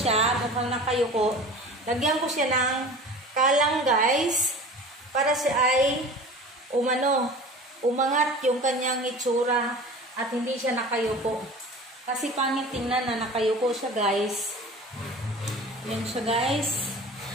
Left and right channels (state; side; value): normal; both; correlation 0.39